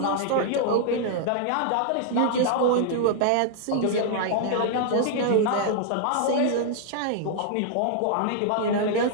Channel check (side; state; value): both; different; correlation -0.01